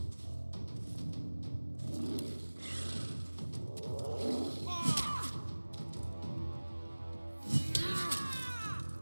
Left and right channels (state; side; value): inverted; both; correlation -1.00